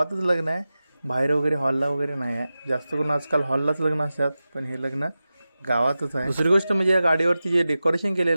लग्न आहे, बाहेर वगैरे हॉलला वगैरे नाही आहे. जास्त करून आजकाल हॉललाच लग्न असतात, पण हे लग्न गावातच आहे. दुसरी गोष्ट म्हणजे या गाडीवरती जे डेकोरेशन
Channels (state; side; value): inverted; both; correlation -0.94